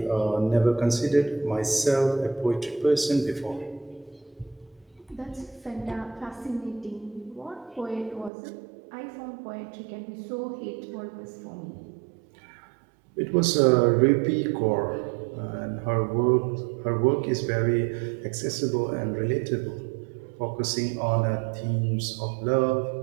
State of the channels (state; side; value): drops out; left; at 8.3 s